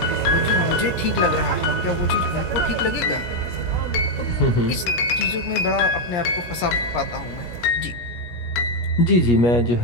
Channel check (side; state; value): right; late; 17 ms